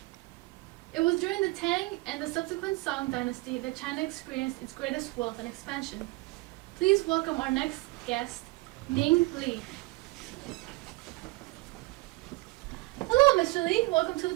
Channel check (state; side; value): quieter; left; 22.4 dB